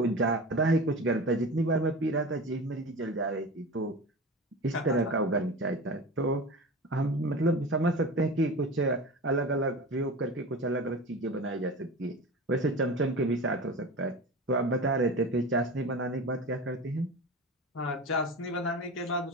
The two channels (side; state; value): both; normal; correlation 0.31